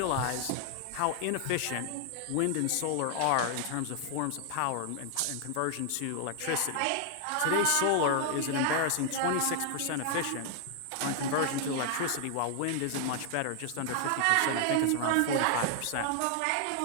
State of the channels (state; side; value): different; both; correlation 0.00